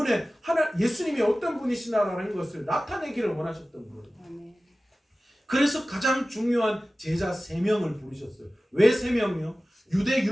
예수님이 어떤 분이시나라는 것을 나타내기를 원하셨던 거예요. 그래서 가장 중요한 제자 3명을 부르셨어요. 왜 3명이요? 유대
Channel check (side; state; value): both; normal; correlation 0.96